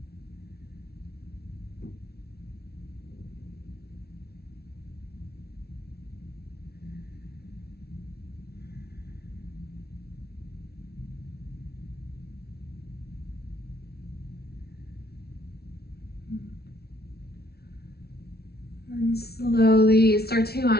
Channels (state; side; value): late; right; 0.46 ms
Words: And slowly start to